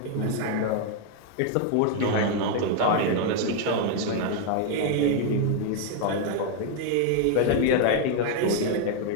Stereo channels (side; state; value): both; different; correlation 0.00